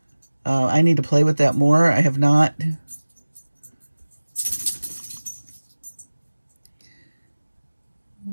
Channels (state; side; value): inverted; both; correlation -1.00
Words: I need to play with that more. I have not.